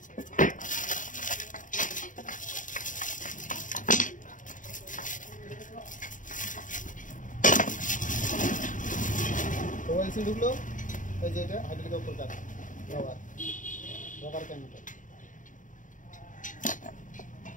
ওয়েল সিল ঢুকলো, এই যে এটা হাইড্রোলিকের উপর কাজ রবার ক্যানোটা।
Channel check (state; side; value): late; right; 0.38 ms